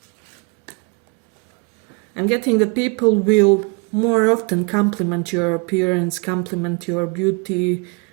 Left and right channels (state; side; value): quieter; left; 32.2 dB